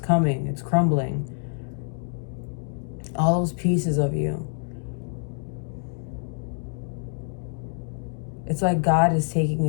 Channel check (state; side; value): silent; right; 61 dB below the other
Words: It's crumbling. All those pieces of you. It's like God is taking